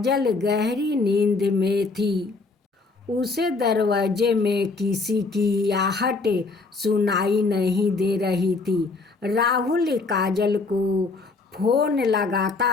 गहरी नींद में थी। उसे दरवाजे में किसी की आहट सुनाई नहीं दे रही थी। राहुल काजल को फ़ोन लगाता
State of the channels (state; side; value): quieter; right; 3.9 dB